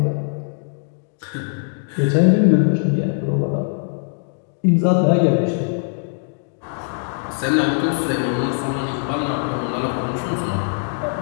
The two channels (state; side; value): silent; right; digital silence